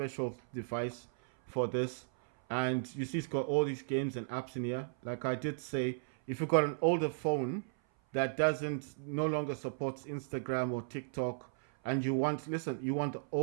device for this. And you see it's got all these games and apps in here. Like I did say, if you've got an older phone that no longer supports Instagram or TikTok, and you want the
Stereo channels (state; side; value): silent; left; 54 dB below the other